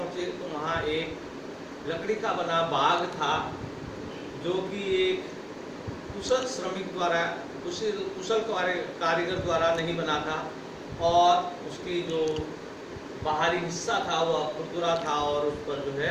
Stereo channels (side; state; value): both; identical; correlation 1.00